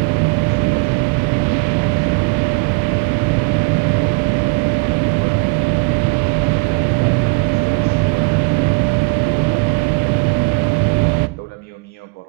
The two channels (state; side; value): quieter; left; 29.7 dB